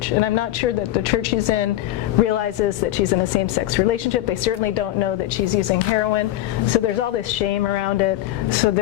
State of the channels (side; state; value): right; quieter; 14.3 dB